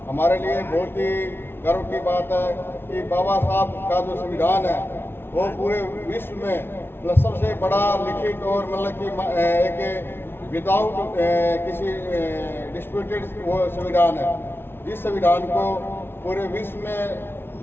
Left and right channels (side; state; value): right; late; 0.11 ms